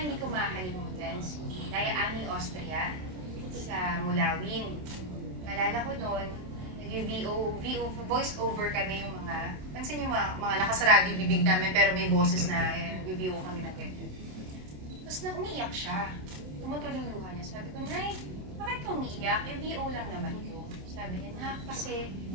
ko makakalimutan, si Daya Ani Austria sa Mulawin. Malala ko noon, voice over kami yung mga, pansin yung mga nakasarado yung bibig namin pero may boses na nag-VO kami ng ganyan. Tapos na umiiyak siya. Tumutulong luha niya. Sabi ko, Nay, bakit ka umiiyak? VO lang naman ko. Sabi niya, na kasi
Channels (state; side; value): late; left; 27 ms